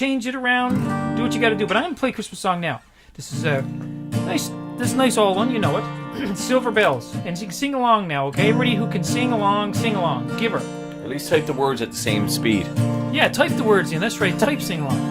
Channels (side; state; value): both; identical; correlation 1.00